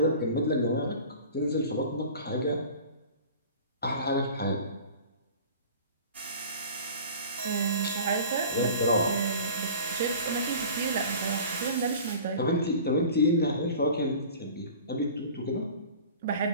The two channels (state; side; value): inverted; both; correlation -0.41